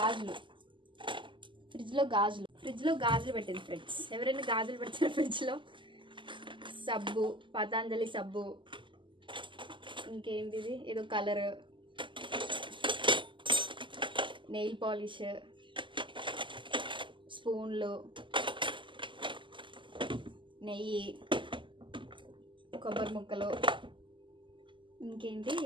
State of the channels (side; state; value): left; late; 0.24 ms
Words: పెట్టింది ఫ్రెండ్స్. ఎవరైనా గాజులు పెడతారు ఫ్రిడ్జ్లో. సబ్బు, పతాంజలి సబ్బు, ఇంకేంటిది ఏదో కలర్, నెయిల్ పాలిష్, స్పూన్లు, నెయ్యి, కొబ్బరి ముక్కలు, ఇంకేంటి